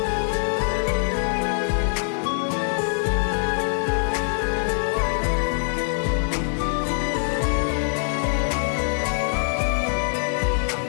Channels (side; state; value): right; silent; digital silence